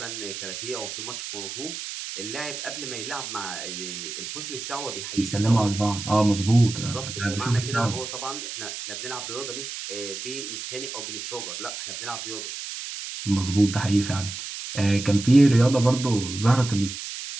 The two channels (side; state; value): right; noise; hiss, 8 dB below the sound